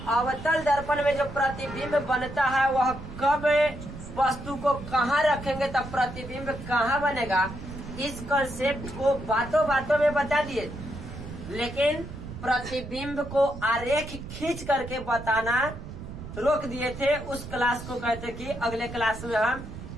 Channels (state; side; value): noise; right; rumble, 11 dB below the sound